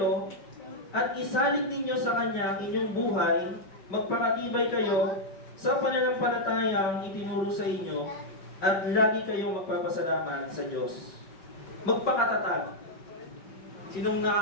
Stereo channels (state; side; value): late; right; 5.3 ms